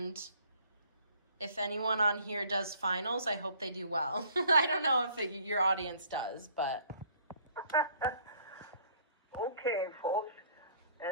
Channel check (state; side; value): inverted; both; correlation -0.58